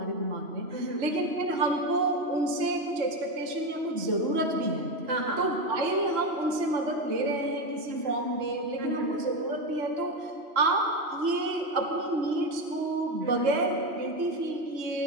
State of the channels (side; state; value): left; late; 3.0 ms